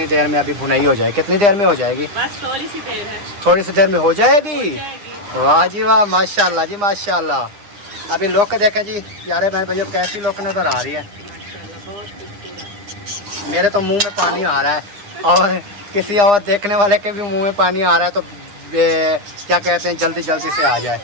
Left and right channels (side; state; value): left; late; 9.8 ms